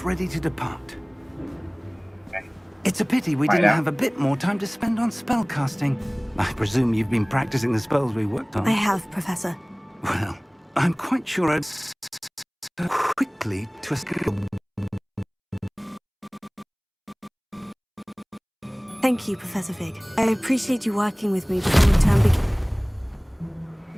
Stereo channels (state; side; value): identical; both; correlation 1.00